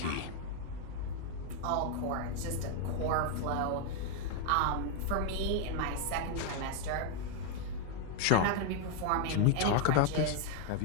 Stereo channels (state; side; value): different; both; correlation 0.00